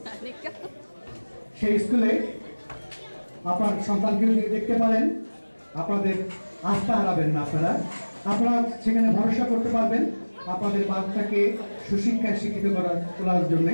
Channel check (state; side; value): inverted; both; correlation -1.00